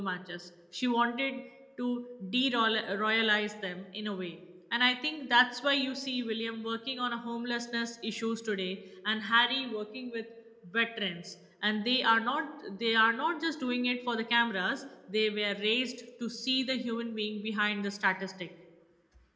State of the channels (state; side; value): identical; both; correlation 1.00